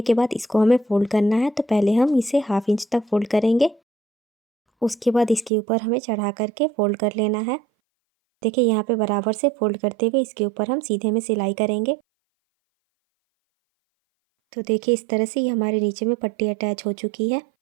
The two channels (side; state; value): left; drops out; at 5.5 s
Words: के बाद इसको हमें फोल्ड करना है। तो पहले हम इसे 1/2 इंच तक फोल्ड करेंगे, उसके बाद इसके ऊपर हमें चढ़ा करके फोल्ड कर लेना है। देखिए यहाँ पे बराबर से फोल्ड करते हुए इसके ऊपर हम सीधे में सिलाई करेंगे। तो देखिए इस तरह से ये हमारे नीचे में पट्टी अटैच हो चुकी है।